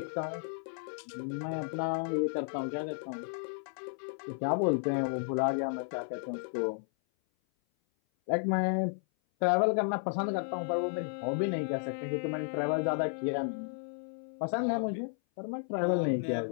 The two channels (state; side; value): silent; right; 56 dB below the other